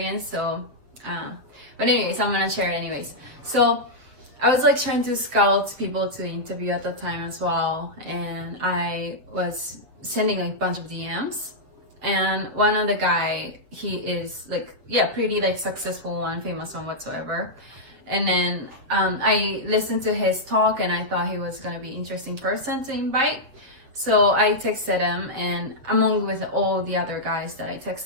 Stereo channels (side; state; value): left; late; 7.6 ms